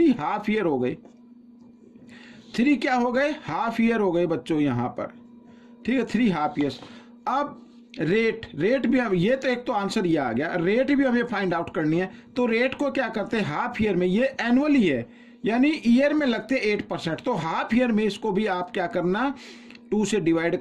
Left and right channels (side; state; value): both; identical; correlation 1.00